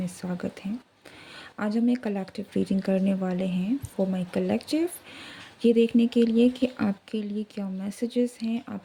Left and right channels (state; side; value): identical; both; correlation 1.00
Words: स्वागत है। आज हम एक कलेक्टिव रीडिंग करने वाले हैं फॉर माय कलेक्टिव, ये देखने के लिए कि आपके लिए क्या मैसेजेस हैं,